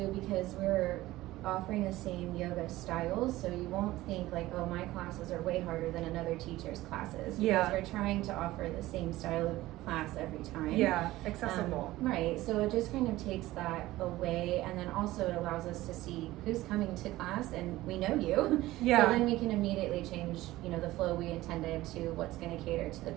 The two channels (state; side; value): quieter; left; 17.1 dB